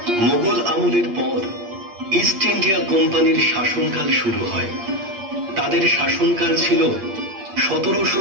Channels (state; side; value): late; left; 8.6 ms